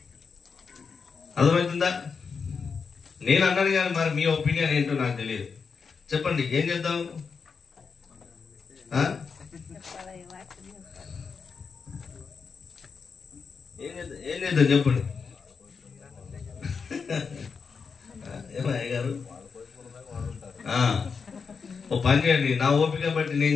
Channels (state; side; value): quieter; right; 5.5 dB